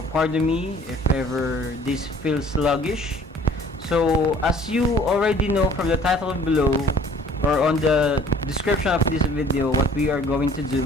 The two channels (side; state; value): both; normal; correlation 0.53